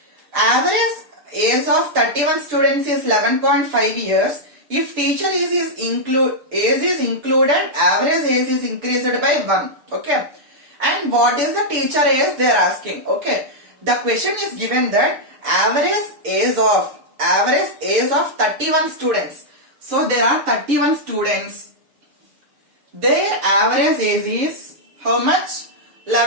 average age of 31 students is 11.5 years. If teacher age is included, average age is increased by 1. Okay, and what is the teacher age they are asking? Okay, the question is given that average age of 31 students. So there are 31 students. Their average age is how much?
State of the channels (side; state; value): left; late; 6.8 ms